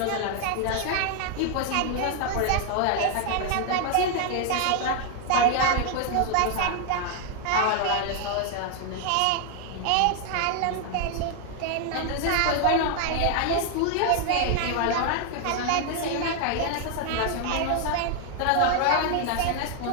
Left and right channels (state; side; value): different; both; correlation 0.00